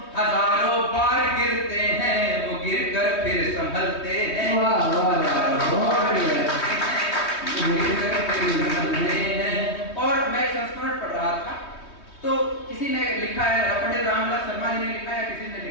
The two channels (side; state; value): right; late; 3.2 ms